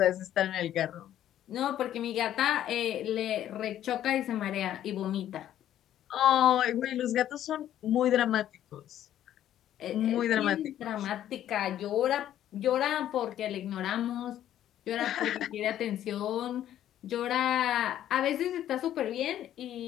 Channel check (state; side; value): quieter; right; 11.6 dB